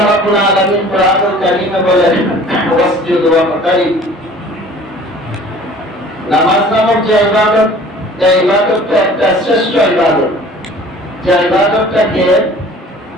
রাব্বুল আলামিন কোরআনুল কারীমে বলেন, ওয়াসজুদ ওয়াকতারিব। নামাজ নামক যে ইবাদত, এই ইবাদতটা একটা শ্রেষ্ঠ ইবাদত, যে ইবাদতটাকে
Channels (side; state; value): both; normal; correlation 0.48